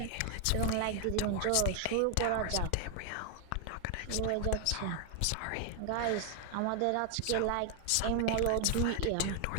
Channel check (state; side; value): different; both; correlation 0.00